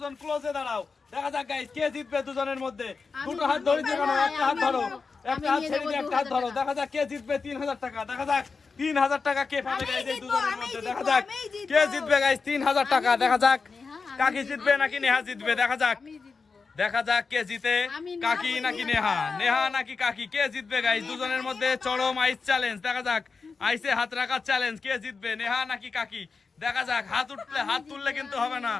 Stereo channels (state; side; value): quieter; right; 4.7 dB